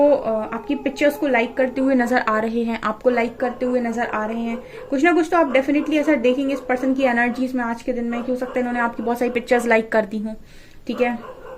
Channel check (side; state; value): both; identical; correlation 1.00